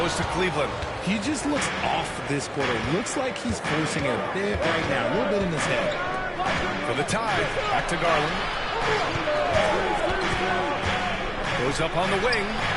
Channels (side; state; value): both; identical; correlation 1.00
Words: to Cleveland. He just looks off this quarter. Looks like he's forcing it a bit right now. A little bit in his head. For the tie. Back to Garland. Goes up on the wing.